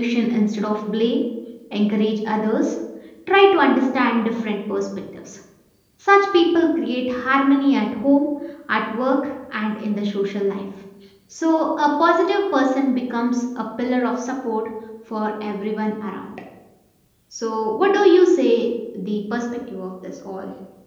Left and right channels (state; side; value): identical; both; correlation 1.00